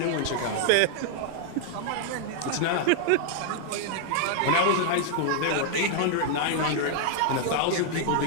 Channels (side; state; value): both; different; correlation 0.00